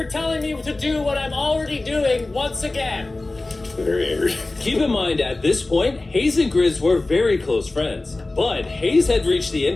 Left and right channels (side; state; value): right; quieter; 3.0 dB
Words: telling me to do what I'm already doing once again. Very angry. Keep in mind, at this point, Hayes and Grizz were very close friends. But Hayes had reached the